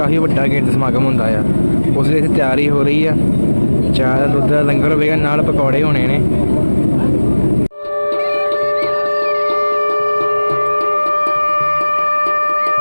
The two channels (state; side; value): inverted; both; correlation -1.00